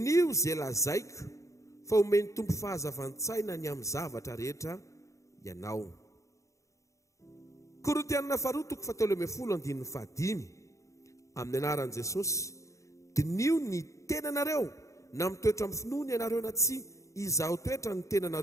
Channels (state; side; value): late; right; 0.15 ms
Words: izay lazaiko fa omeny tompo fahazavan-tsaina ny amin'ny zavatra rehetra ianao. Korintianina 2:7 amin'ny anaran'i Jesosy, dinio ny tenanareo na mitoetra amin'ny finoana ianareo na tsy izaho toetra ny